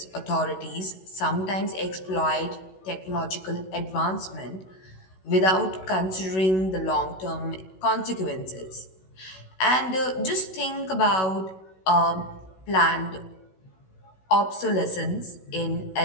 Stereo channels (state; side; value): late; right; 16 ms